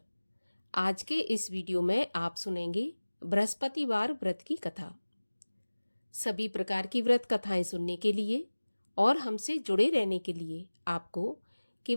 आज के इस वीडियो में आप सुनेंगे बृहस्पतिवार व्रत की कथा। सभी प्रकार की व्रत कथाएं सुनने के लिए और हमसे जुड़े रहने के लिए आपको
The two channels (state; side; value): inverted; both; correlation -1.00